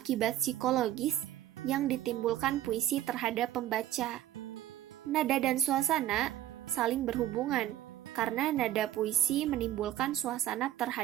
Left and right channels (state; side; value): quieter; left; 12.9 dB